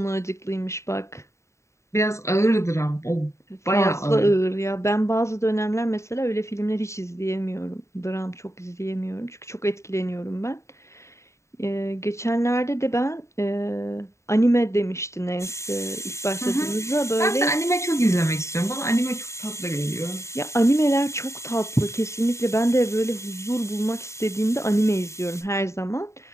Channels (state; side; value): late; right; 0.14 ms